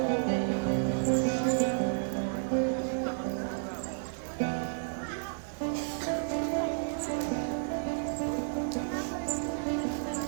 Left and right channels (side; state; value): left; silent; 57 dB below the other